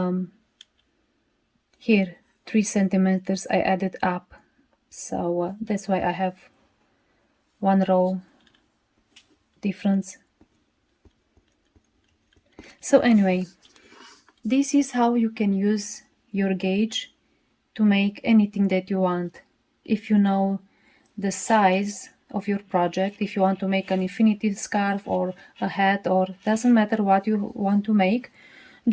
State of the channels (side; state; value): both; identical; correlation 1.00